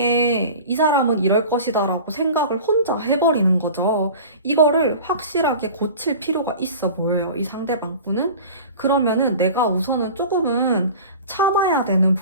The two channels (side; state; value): both; inverted; correlation -0.38